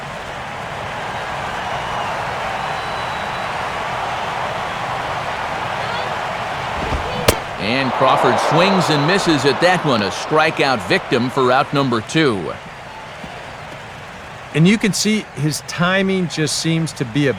And Crawford swings and misses at that one, a strikeout victim for out number 2. And you can see his timing just seems to be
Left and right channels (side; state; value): both; identical; correlation 1.00